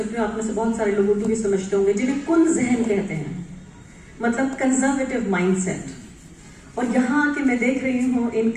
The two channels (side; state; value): both; identical; correlation 1.00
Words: हूँ। आप में से बहुत सारे लोग उर्दू भी समझते होंगे, जिन्हें कुन जहन कहते हैं, मतलब कंजर्वेटिव माइंडसेट। और यहाँ आके मैं देख रही हूँ